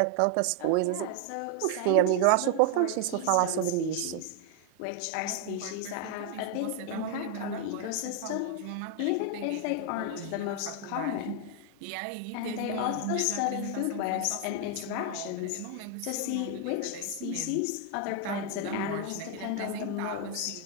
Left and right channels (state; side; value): different; both; correlation 0.00